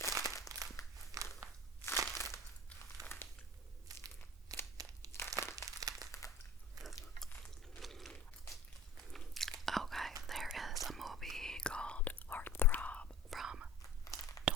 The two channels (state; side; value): normal; both; correlation 0.40